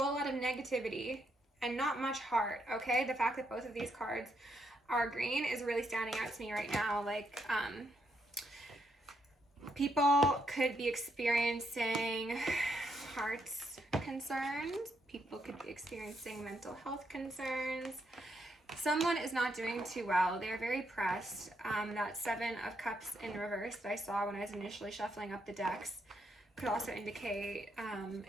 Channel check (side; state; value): both; normal; correlation 0.78